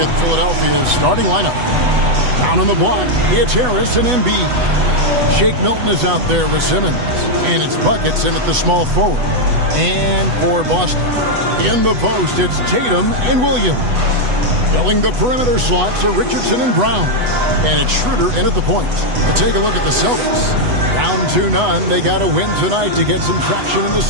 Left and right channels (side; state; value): left; late; 8.1 ms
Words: at Philadelphia's starting lineup. Down on the block, it's Harris and Embiid. Shake Milton is out there with Simmons. And it's Buckets in at the small forward. And for Boston, in the post, it's Tatum and Williams. Filling the perimeter slots are Richardson and Brown. And it's Schroeder in at the point. And take a look at the Celtics. Down 2-0. They got to win tonight to get some traction in the